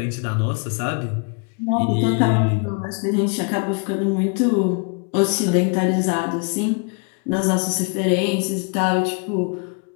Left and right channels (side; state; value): right; quieter; 36.2 dB